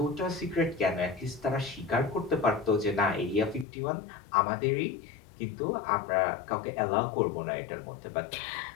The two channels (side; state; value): right; drops out; at 3.7 s